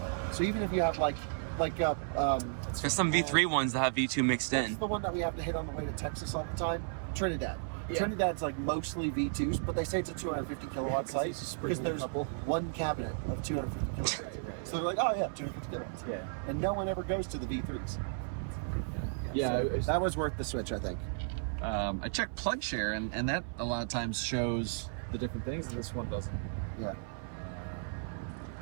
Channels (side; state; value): left; silent; 55 dB below the other